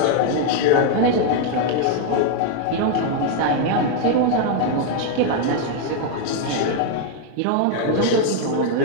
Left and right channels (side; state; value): both; different; correlation 0.00